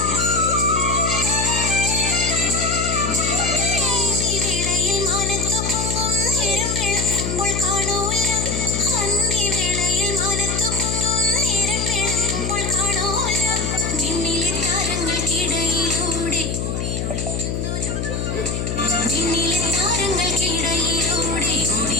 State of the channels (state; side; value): noise; left; hum, 2 dB below the sound